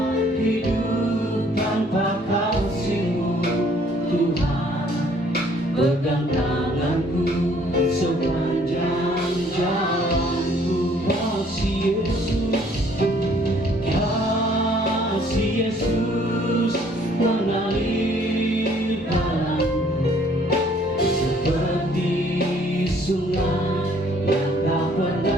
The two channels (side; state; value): both; normal; correlation 0.61